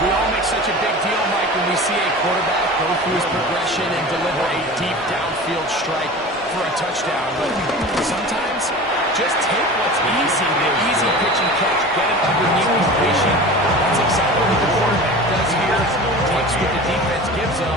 all make such a big deal, Mike, when we see a quarterback go through his progression and deliver a deep downfield strike for a touchdown. But sometimes, just take what's easy, the easy pitch and catch, get it underneath completion. That's exactly what the quarterback does here. Takes what the defense gives them.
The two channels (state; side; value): normal; both; correlation 0.36